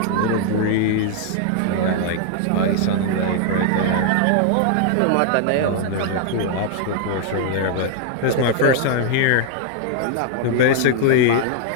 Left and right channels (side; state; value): both; different; correlation 0.00